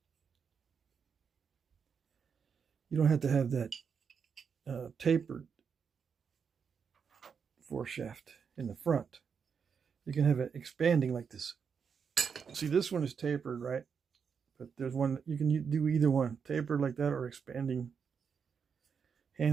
you don't have to have that tapered foreshaft in the front. You can have it expanding like this. See, this one is tapered, right? But there's one, you can do either one, tapered like that or expanding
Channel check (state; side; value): quieter; left; 6.4 dB